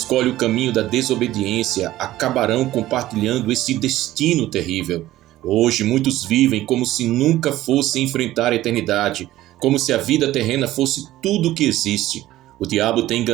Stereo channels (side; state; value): left; quieter; 15.2 dB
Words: o caminho da desobediência acabarão compartilhando esse destino terrível. Hoje, muitos vivem como se nunca fossem enfrentar a eternidade, como se a vida terrena fosse tudo o que existe. O diabo tem